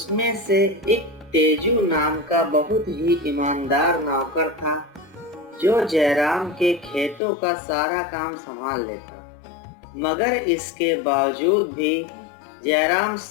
से एक तेजू नाम का बहुत ही ईमानदार नौकर था जो जयराम के खेतों का सारा काम संभाल लेता। मगर इसके बावजूद भी जयराम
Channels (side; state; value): right; drops out; at 7.2 s